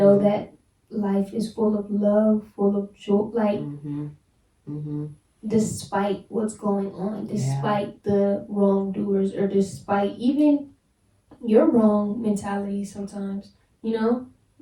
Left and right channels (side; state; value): both; identical; correlation 1.00